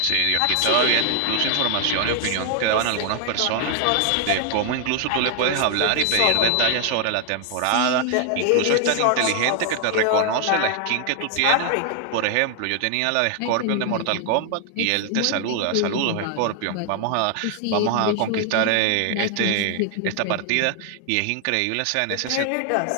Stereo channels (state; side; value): different; both; correlation 0.00